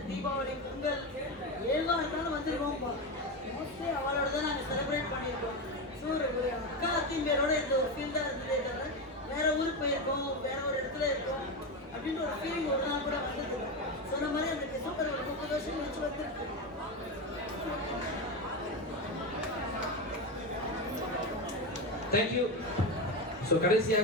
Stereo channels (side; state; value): both; normal; correlation 0.15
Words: தீபாவளி, பொங்கல், ஏழ்வாக இருந்தாலும் வந்துருக்கோம். மோஸ்ட்லி அவளோட தான் நாங்கள் செலிப்ரேட் பண்ணியிருக்கோம். ஸோ ஒரு அக்கா அத்திம்பேரோட இந்த ஒரு ஃபீல் தான் இருந்ததே தவிர வேற ஊருக்கு போயிருக்கோம், வேற ஒரு இடத்துல இருக்கோம் அப்படின்ற ஒரு ஃபீலிங் ஒரு நாள் கூட வந்தது. சொன்ன மாதிரி அந்த டிசம்பர் ஒரு 30 வருஷம் கழிச்சு வந்துருக்கு. தேங்க்யூ. ஸோ